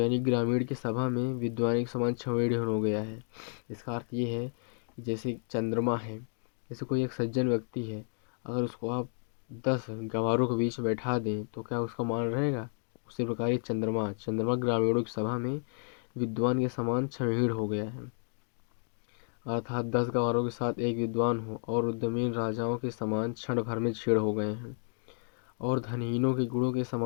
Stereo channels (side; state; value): right; silent; 57 dB below the other